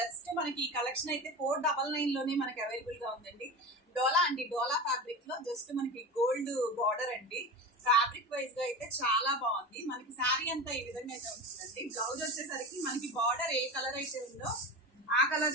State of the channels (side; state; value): both; normal; correlation 0.27